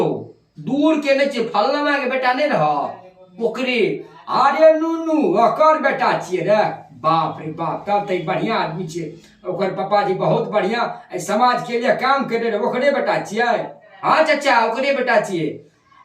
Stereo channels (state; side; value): identical; both; correlation 1.00